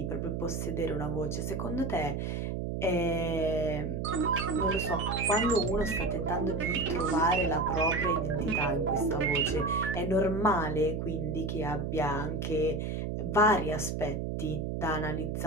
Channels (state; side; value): noise; right; hum, 2 dB below the sound